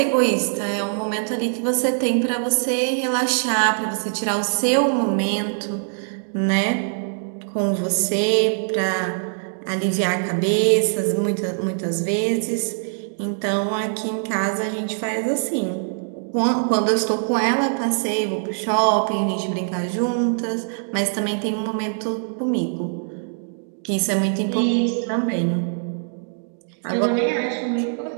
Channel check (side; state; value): left; silent; digital silence